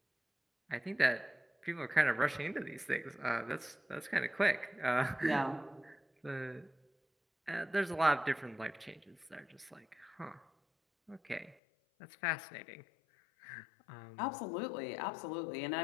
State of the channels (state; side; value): drops out; right; at 11.6 s